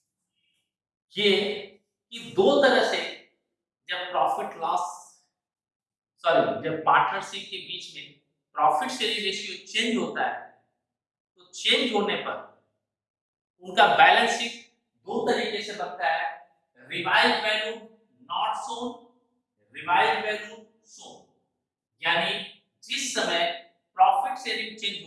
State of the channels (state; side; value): identical; both; correlation 1.00